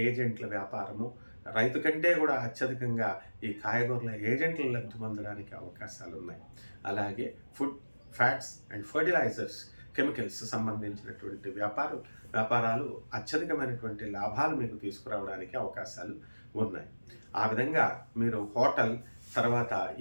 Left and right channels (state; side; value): inverted; both; correlation -1.00